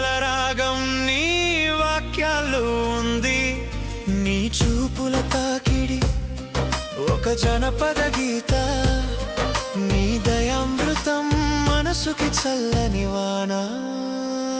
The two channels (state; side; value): identical; both; correlation 1.00